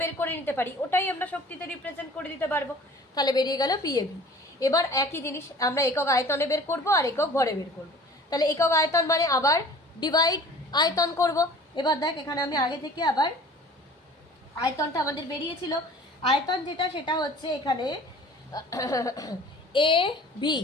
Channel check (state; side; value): normal; both; correlation 0.46